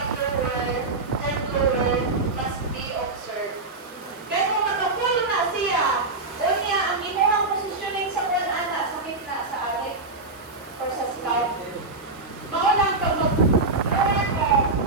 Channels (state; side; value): quieter; left; 3.4 dB